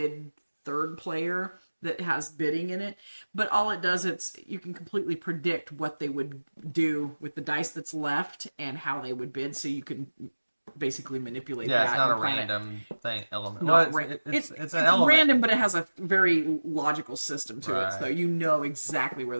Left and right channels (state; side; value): inverted; both; correlation -1.00